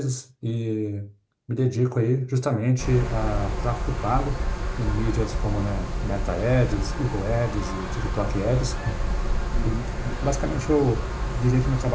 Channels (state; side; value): identical; both; correlation 1.00